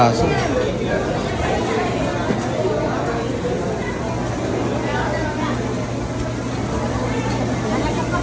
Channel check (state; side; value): identical; both; correlation 1.00